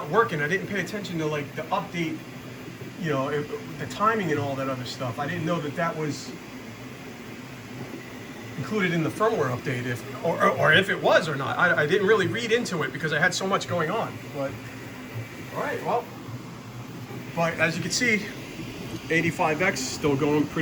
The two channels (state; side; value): identical; both; correlation 1.00